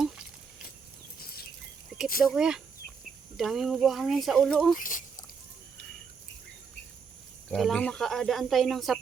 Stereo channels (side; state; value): left; quieter; 5.7 dB